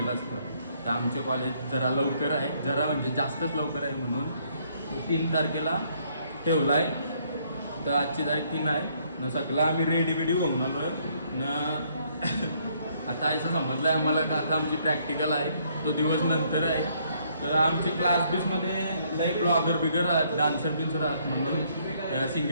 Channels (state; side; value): inverted; both; correlation -0.68